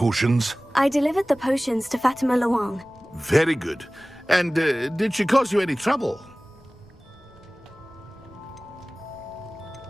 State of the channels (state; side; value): noise; left; rumble, 29 dB below the sound